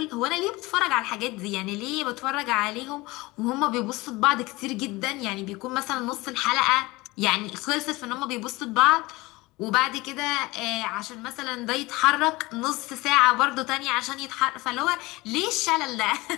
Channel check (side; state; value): right; quieter; 21.6 dB